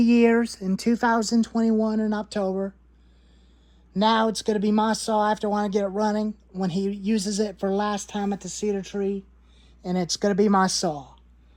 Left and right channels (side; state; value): both; identical; correlation 1.00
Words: in 2021 in October. Now it's going to be my saw. I have to want to get it running when he uses it for last time at the cedar tree. And it's going to be my saw.